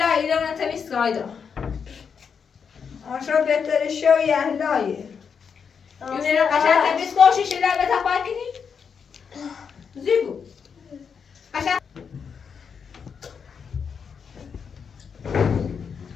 ایران تمیز کایدا آشو بهتره شوی اهلایه یونه قشنگ تمیز کوشی شده به تپای کنی زیبو قشنگ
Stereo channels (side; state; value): right; quieter; 6.5 dB